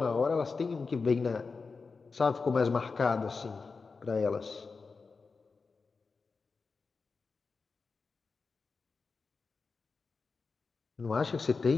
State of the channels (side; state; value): right; quieter; 4.5 dB